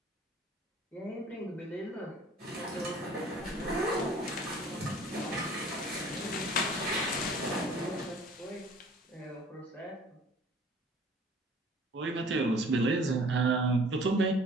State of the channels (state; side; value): normal; both; correlation 0.51